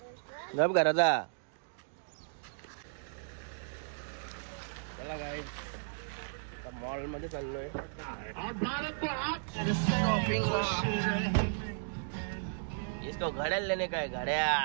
गप घराचा चला काय मॉल मध्ये चाललोय इसको घड़ियाल लेने का है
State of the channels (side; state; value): left; silent; digital silence